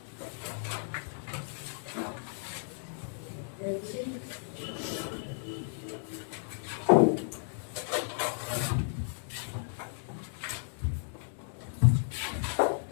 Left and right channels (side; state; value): right; silent; digital silence